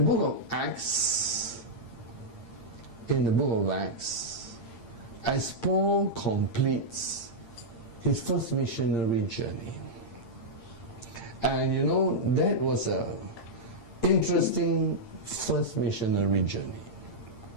of Acts, as Paul completes his first missionary journey. And you know, that was a interesting first missionary journey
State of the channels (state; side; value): late; right; 8.7 ms